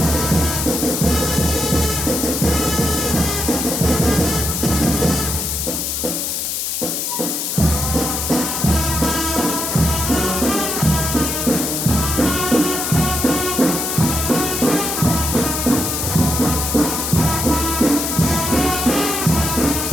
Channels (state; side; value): noise; left; hiss, 2 dB below the sound